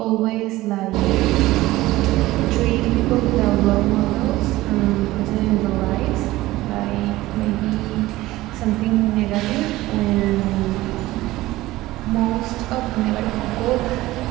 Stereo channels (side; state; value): left; quieter; 17.5 dB